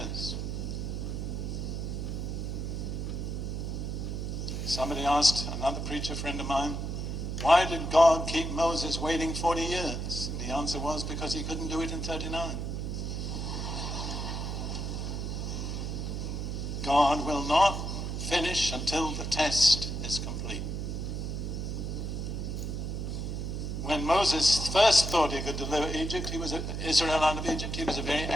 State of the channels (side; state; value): right; noise; hum, 3 dB below the sound